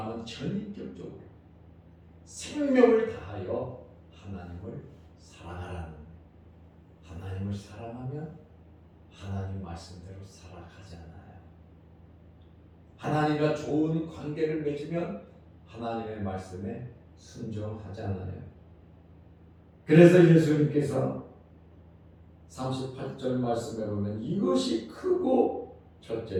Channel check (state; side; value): identical; both; correlation 1.00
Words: 전인격적으로 생명을 다하여 하나님을 사랑하라는 거예요. 하나님을 사랑하면 하나님 말씀대로 살아가잖아요. 하나님과 좋은 관계를 맺으면 하나님의 말씀에 순종하잖아요. 그래서 예수님께서 38절 말씀에 보면 이것이 크고